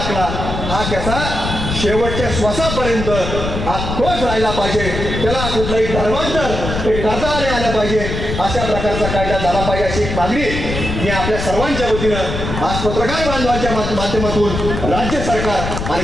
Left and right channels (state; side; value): noise; left; rumble, 4 dB below the sound